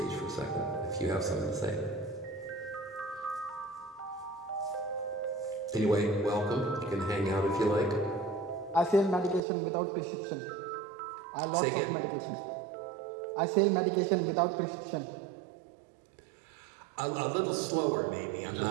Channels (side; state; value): left; drops out; at 9.4 s